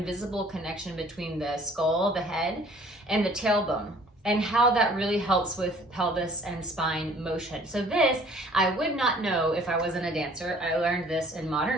connection between the skull, the head, and the tailbone, and how that really helps with pelvis and spine motion. So this, I would not know if I wasn't a dancer. I learned this in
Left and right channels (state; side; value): normal; both; correlation 0.54